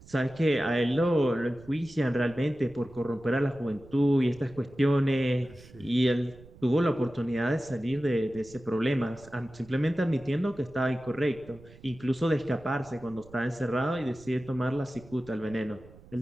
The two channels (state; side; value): noise; right; rumble, 21 dB below the sound